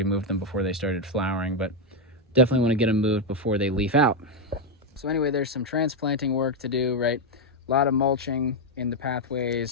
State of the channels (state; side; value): normal; both; correlation 0.03